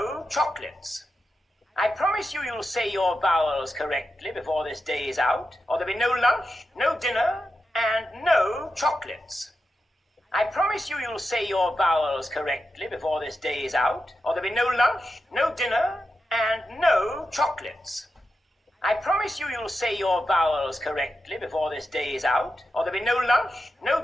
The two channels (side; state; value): both; normal; correlation 0.89